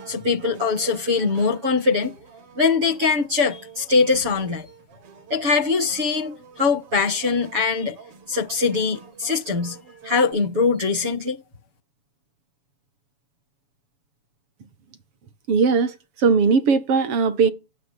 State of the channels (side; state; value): left; late; 7.1 ms